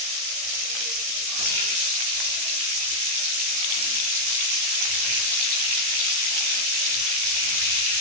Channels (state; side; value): late; left; 16 ms